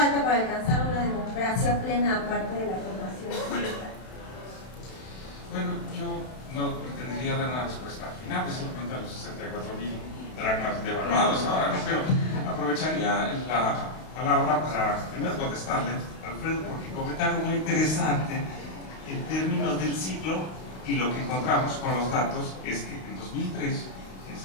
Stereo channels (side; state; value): right; late; 32 ms